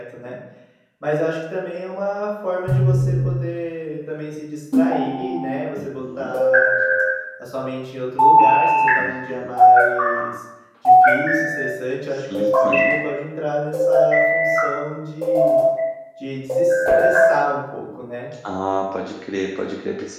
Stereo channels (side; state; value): both; identical; correlation 1.00